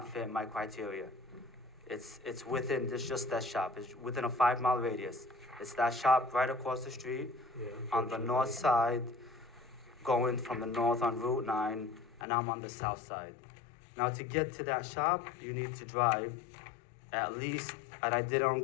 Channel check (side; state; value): right; drops out; at 12.2 s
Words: fit my criteria. It's within, it's just that shop. It's within a 5-mile radius. It's that shop right across the street on the north side, going from the north on Route 9, and I'm on the south side. Now, to get to that shop, you need to drive at least, and I did it on